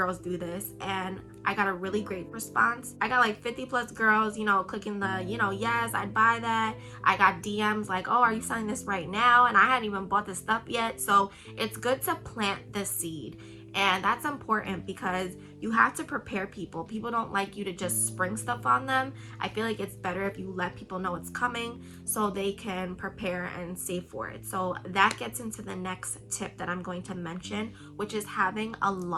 do this and I got a really great response. I got like 50 plus girls, you know, clicking the, you know, yes, I'd buy that. I got DMs like, oh, are you selling this right now? And I hadn't even bought the stuff yet. So it's good to plant the seed. And that's important because you have to prepare people. People don't like you to just spring stuff on them. I feel like it's better if you let people know it's coming so they can prepare and save for it. So that gets into the next tip that I'm going to mention, which is having a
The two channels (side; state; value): both; identical; correlation 1.00